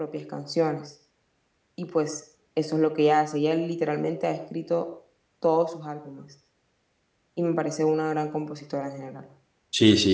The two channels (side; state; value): both; identical; correlation 1.00